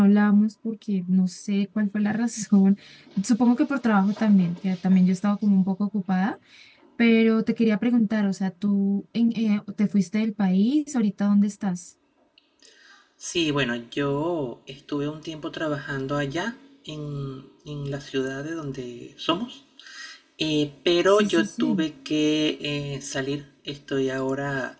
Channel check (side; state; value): both; identical; correlation 1.00